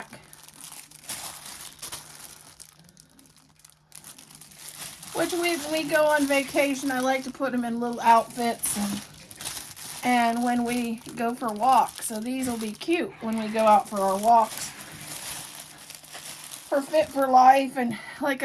Which when we go on vacation, I like to put them in little outfits and when we go for walks. So these will be cute when we go out for our walks. For Fit for Life, and like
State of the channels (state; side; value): identical; both; correlation 1.00